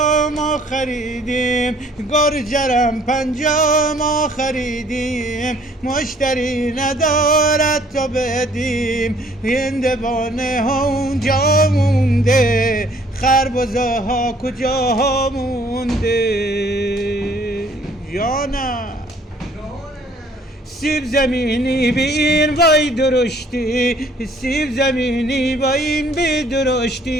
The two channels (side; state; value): both; normal; correlation 0.59